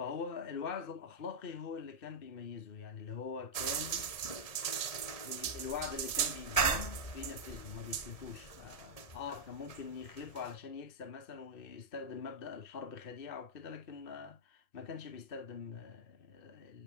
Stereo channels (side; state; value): right; late; 1.8 ms